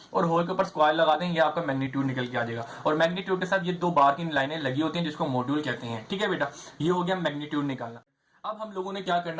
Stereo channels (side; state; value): both; identical; correlation 1.00